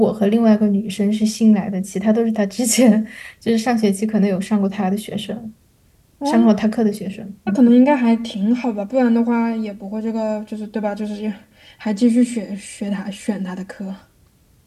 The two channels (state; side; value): identical; both; correlation 1.00